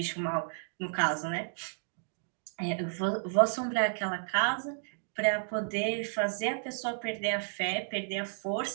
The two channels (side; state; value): left; silent; digital silence